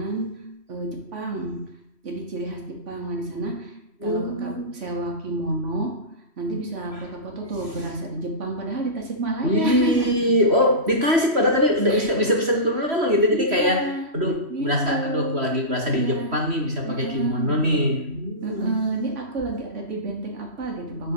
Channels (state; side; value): late; left; 3.0 ms